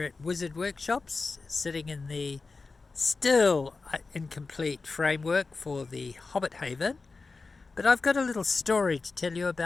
at Wizard Workshops, sitting in the still incomplete framework for the Hobbit Haven. But I've got a little story to tell you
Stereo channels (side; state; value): right; quieter; 4.1 dB